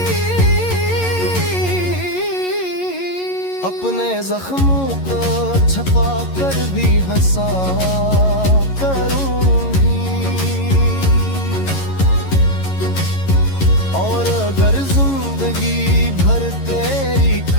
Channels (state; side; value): late; right; 11 ms